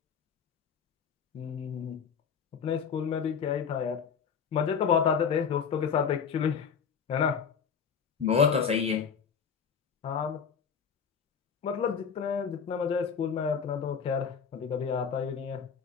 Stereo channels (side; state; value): right; quieter; 6.7 dB